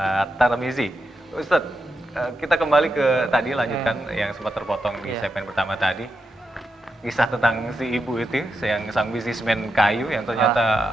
Tarmizi. Ustadz, kita kembali ke tadi, lanjutkan yang sempat terpotong di segmen pertama tadi. Kisah tentang si ibu itu, yang sang bisnismen kayu yang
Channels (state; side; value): normal; both; correlation 0.86